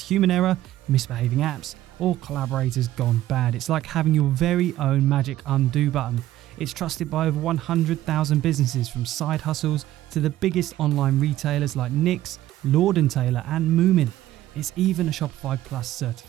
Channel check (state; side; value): quieter; left; 14.2 dB